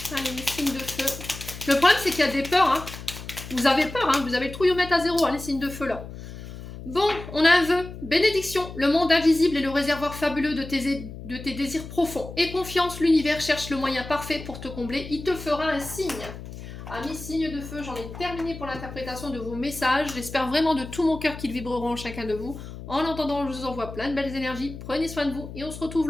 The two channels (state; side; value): noise; left; hum, 12 dB below the sound